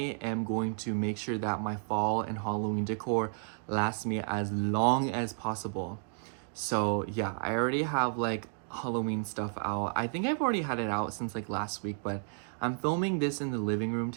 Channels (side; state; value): left; silent; digital silence